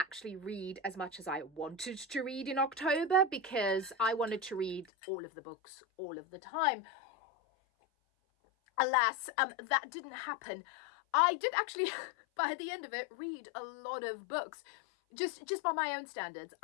read as much as I wanted to read in October because I wanted to read all of the books all of the time. Alas, that didn't happen. I did actually, by the end of it, read a lot of books. Just by my own standards,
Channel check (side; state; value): right; drops out; at 4.9 s